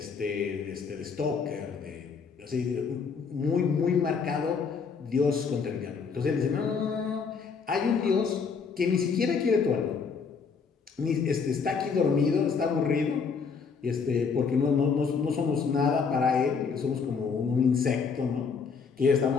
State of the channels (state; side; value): quieter; right; 5.6 dB